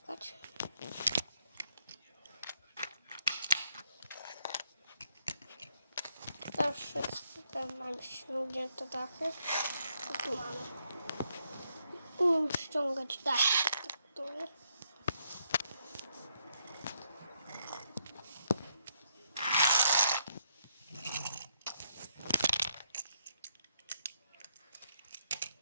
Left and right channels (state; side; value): inverted; both; correlation -0.75